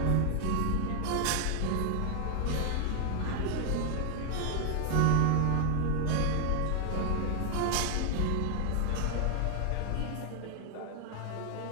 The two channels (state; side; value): different; both; correlation 0.00